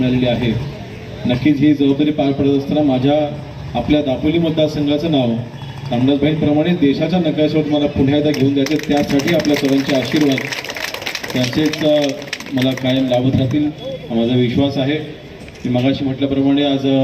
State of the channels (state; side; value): identical; both; correlation 1.00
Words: आहे, नक्कीच ही जबाबदारी पार पडत असताना आपल्या दापोली मतदारसंघाचं नाव रामदासभाईंप्रमाणे देशाच्या नकाशावर मला पुन्हा एकदा घेऊन द्यायचे, त्यासाठी आपल्या सर्वांचे आशीर्वाद त्यांचेच मला कायम लाभत राहतील हा माझा विश्वास आहे। मी मगाशी म्हटल्याप्रमाणे आज